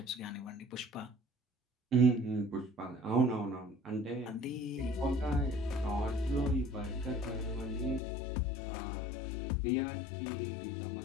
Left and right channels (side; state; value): right; drops out; at 8.0 s